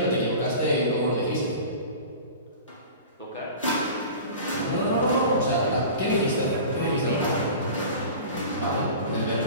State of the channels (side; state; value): both; inverted; correlation -0.37